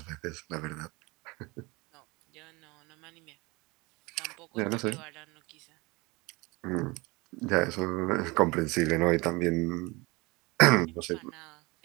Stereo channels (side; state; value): left; quieter; 24.8 dB